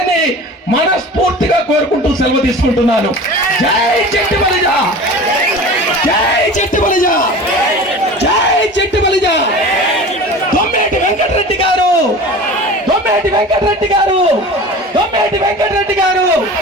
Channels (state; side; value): normal; both; correlation 0.37